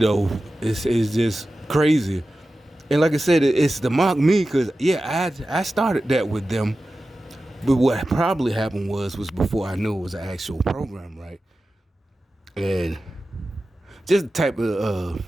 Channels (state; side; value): normal; both; correlation 0.94